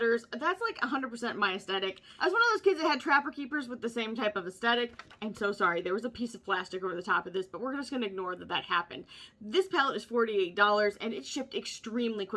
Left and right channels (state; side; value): identical; both; correlation 1.00